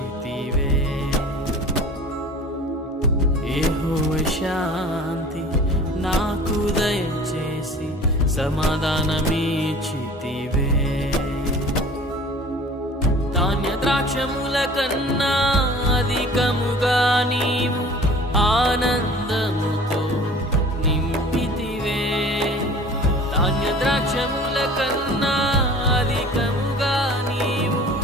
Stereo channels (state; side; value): normal; both; correlation 0.44